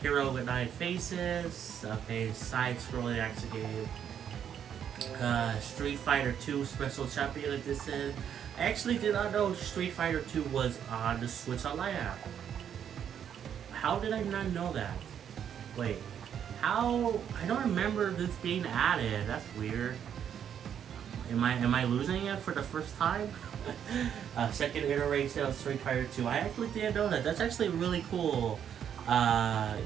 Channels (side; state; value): left; quieter; 8.8 dB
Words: Hero with 9 Faces. Okay, side-scrolling action game. Street Fighter 2 Special Champion Edition. I actually did not know Street Fighter 2 was on the Switch Online app. How did I not know that? Wait, how? I don't remember this being added. That's weird. Am I losing it for the first time? Second iteration of Street Fighter 2. I actually didn't know that. That's actually really cool.